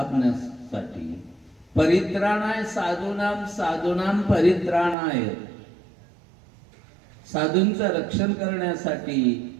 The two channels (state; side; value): drops out; left; at 5.0 s